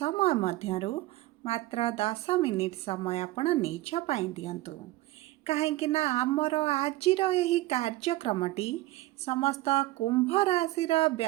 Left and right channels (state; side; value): quieter; left; 18.0 dB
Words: मध्यरु मात्र 10 मिनिट समय आपण निज पाई दियंतु कहीं आमर आजिर यही कार्यक्रमटी समस्त कुंभ राशि